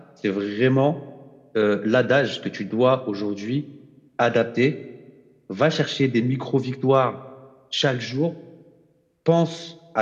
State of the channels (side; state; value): both; identical; correlation 1.00